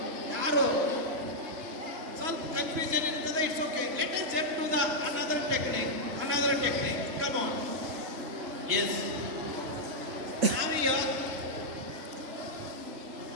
ಯಾರು ಸ್ವಲ್ಪ confusion ಇರ್ತದೆ, it's okay. Let us jump to the another technique. Come on. Yes. Now here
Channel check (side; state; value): left; late; 2.9 ms